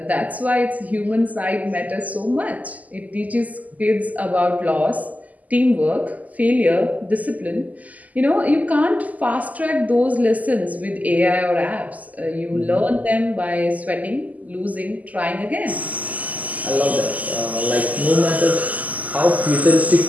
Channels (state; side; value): late; left; 0.077 ms